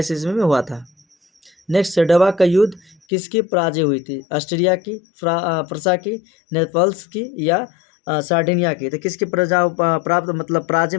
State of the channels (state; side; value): drops out; right; at 3.0 s